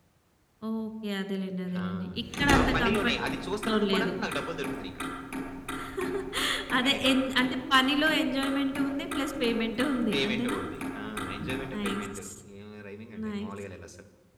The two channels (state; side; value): identical; both; correlation 1.00